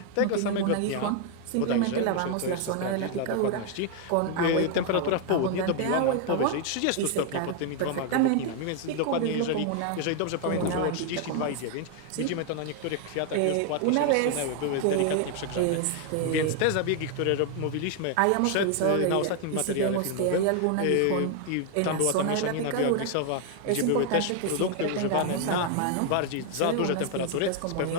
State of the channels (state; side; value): different; both; correlation 0.00